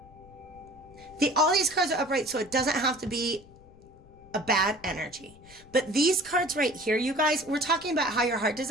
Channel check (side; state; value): left; noise; rumble, 24 dB below the sound